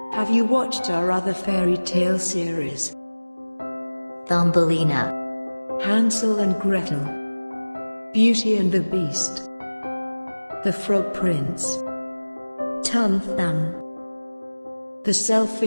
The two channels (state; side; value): inverted; both; correlation -1.00